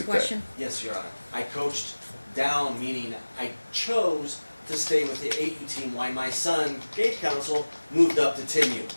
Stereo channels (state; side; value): inverted; both; correlation -1.00